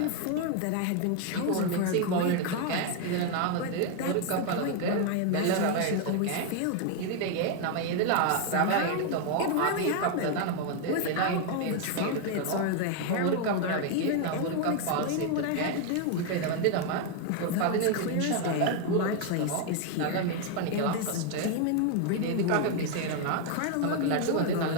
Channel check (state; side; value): different; both; correlation 0.01